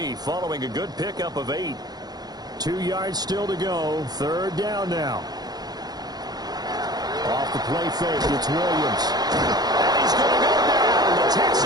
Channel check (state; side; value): late; left; 0.19 ms